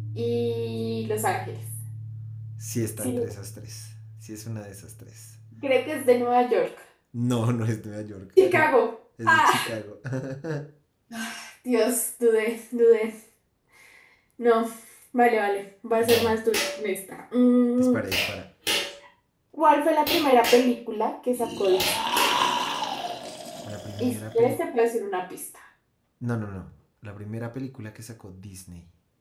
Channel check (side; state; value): both; identical; correlation 1.00